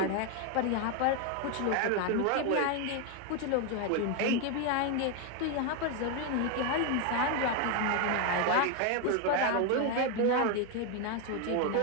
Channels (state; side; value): different; both; correlation 0.01